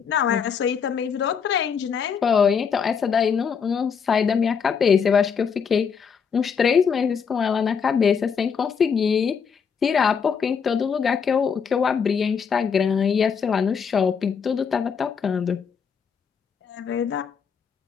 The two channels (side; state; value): right; quieter; 6.5 dB